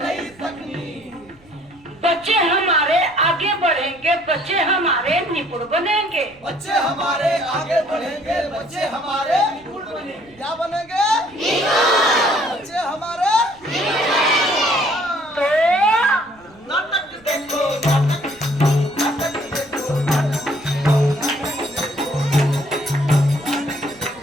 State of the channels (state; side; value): noise; right; rumble, 28 dB below the sound